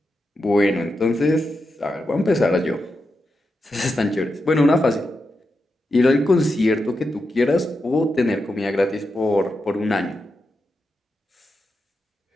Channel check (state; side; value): normal; both; correlation 0.87